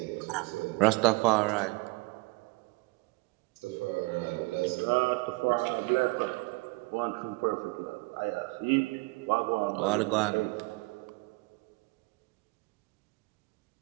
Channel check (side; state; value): left; quieter; 25.7 dB